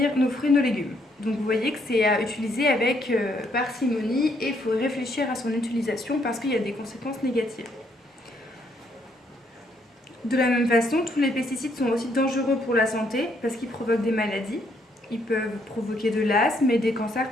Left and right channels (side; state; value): both; normal; correlation 0.71